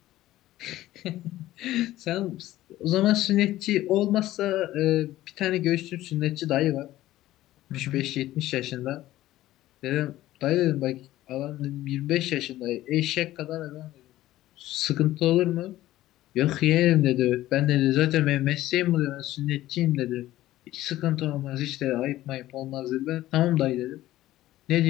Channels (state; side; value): quieter; right; 15.2 dB